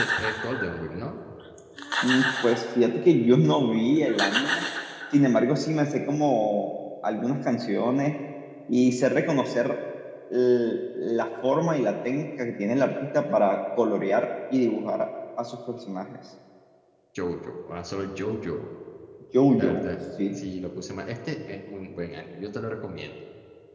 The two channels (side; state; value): both; identical; correlation 1.00